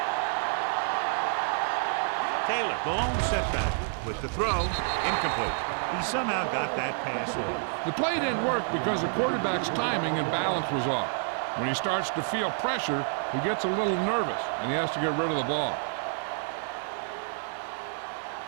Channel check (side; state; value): left; silent; 59 dB below the other